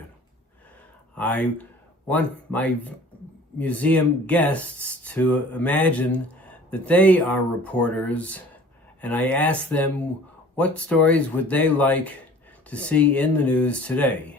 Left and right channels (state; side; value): normal; both; correlation 0.47